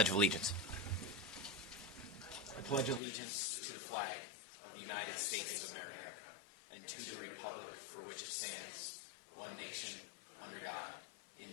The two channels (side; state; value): right; drops out; at 3.0 s